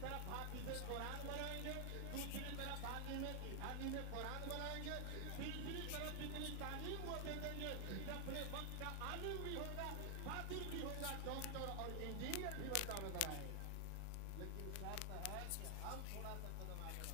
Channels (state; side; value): different; both; correlation 0.00